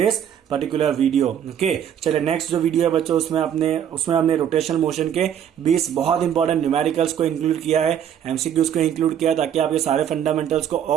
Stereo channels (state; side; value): quieter; left; 9.3 dB